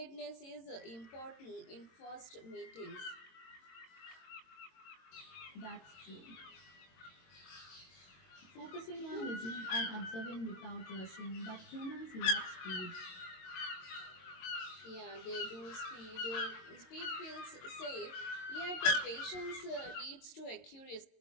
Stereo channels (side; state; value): right; late; 22 ms